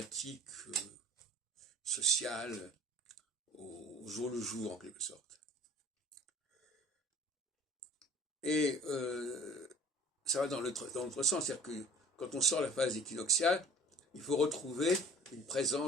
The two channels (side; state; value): both; normal; correlation 0.47